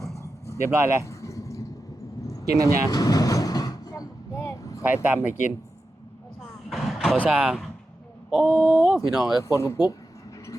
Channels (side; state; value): both; normal; correlation 0.91